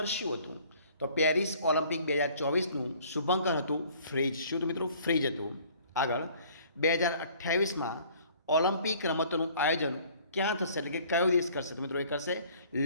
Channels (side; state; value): both; inverted; correlation -0.54